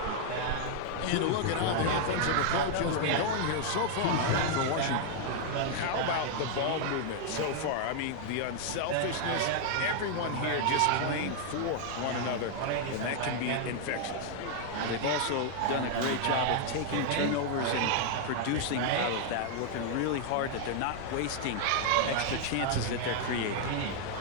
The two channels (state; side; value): different; both; correlation 0.00